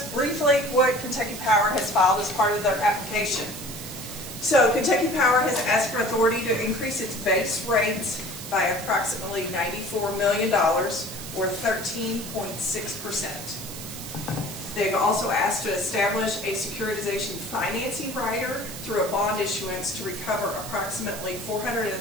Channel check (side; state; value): right; noise; hiss, 11 dB below the sound